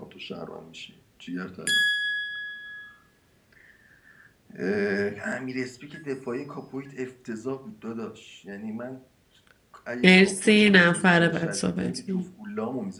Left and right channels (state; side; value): identical; both; correlation 1.00